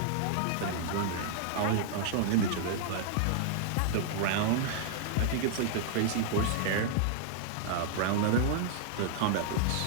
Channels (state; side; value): different; both; correlation -0.01